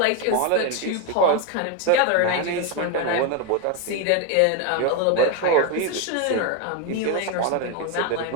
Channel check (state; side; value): different; both; correlation 0.02